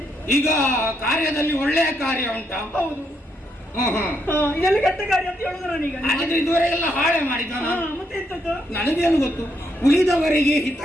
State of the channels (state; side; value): normal; both; correlation 0.76